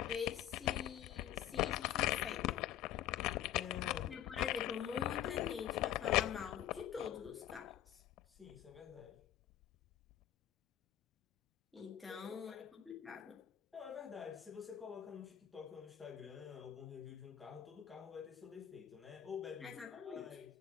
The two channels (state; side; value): quieter; right; 11.8 dB